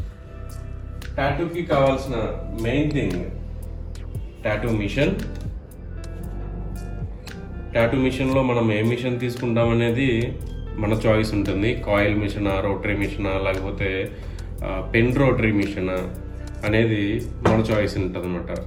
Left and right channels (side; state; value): both; identical; correlation 1.00